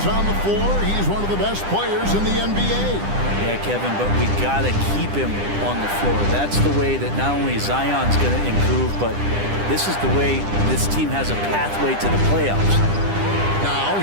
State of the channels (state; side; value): late; left; 10 ms